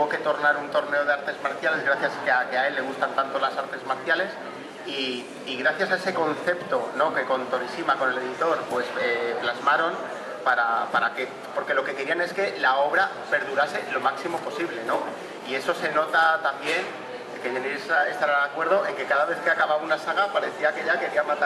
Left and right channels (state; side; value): identical; both; correlation 1.00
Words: que tornar un torneo de artes marciales, gracias a que a él le gustan tanto las artes marciales, y gracias a ese concepto, ¿no? Que con Torishima, con el editor, pues plasmaron porque lo que querían es que la obra perdurase lo máximo posible, ¿no? Y eso se nota también, que Jenny estará de acuerdo, en que cada vez que acababa una saga parecía que ya quería